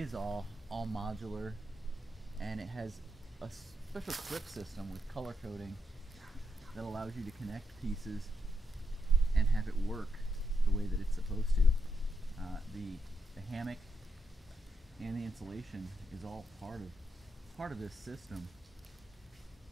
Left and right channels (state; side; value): normal; both; correlation 0.82